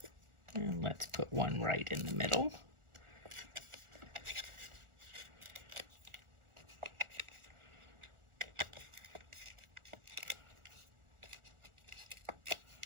And let's put one right in the middle.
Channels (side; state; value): left; late; 1.4 ms